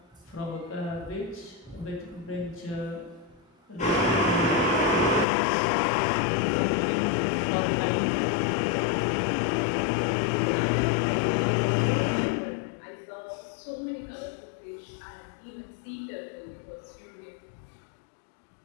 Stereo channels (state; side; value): drops out; right; at 5.2 s